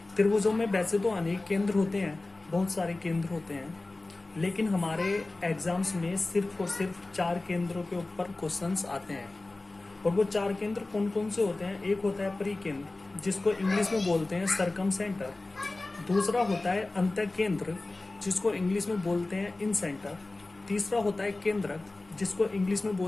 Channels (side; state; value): right; quieter; 3.1 dB